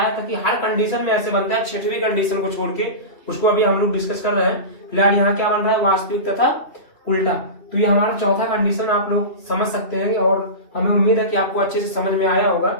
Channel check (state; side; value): late; right; 3.1 ms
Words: था कि हर कंडीशन में ऐसे बनता है, छठवीं कंडीशन को छोड़ के, उसको अभी हम लोग डिस्कस कर रहे हैं। फिलहाल यहाँ क्या बन रहा है, वास्तविक तथा उल्टा। तो ये हमारा चौथा कंडीशन आप लोग समझ सकते हैं और हमें उम्मीद है कि आपको अच्छे से समझ में आया होगा।